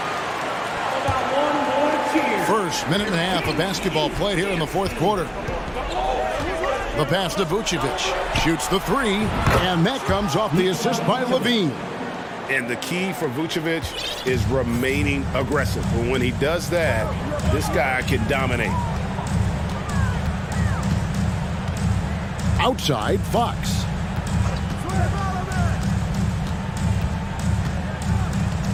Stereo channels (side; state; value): both; identical; correlation 1.00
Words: First minute and a half of basketball played here in the 4th quarter. The pass to Vucevic. Shoots the 3, and that comes off the assist by Levine. And the key for Vucevic is remaining aggressive. But when he does that, this guy can dominate. Outside, Fox.